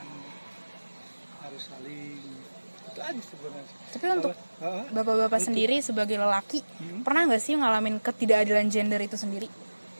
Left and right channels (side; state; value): both; inverted; correlation -1.00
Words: harus saling. Itu aja sebenarnya. Tapi untuk Hah? Bapak-bapak sendiri sebagai lelaki, pernah nggak sih ngalamin ketidakadilan gender itu sendiri?